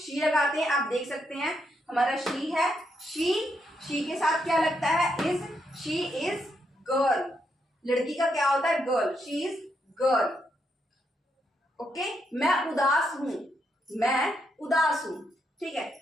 लगाते हैं। आप देख सकते हैं हमारा शी है, शी के साथ क्या लगता है, इज, शी इज गर्ल। लड़की का क्या होता है, girl, she is girl. Okay, मैं उदास हूं, मैं उदास हूं, ठीक है,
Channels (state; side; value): normal; both; correlation 0.79